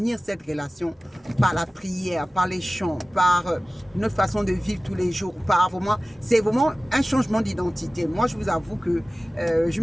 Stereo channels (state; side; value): normal; both; correlation 0.97